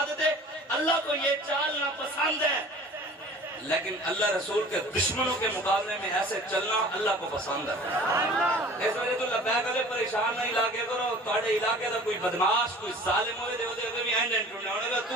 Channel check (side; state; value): both; normal; correlation 0.45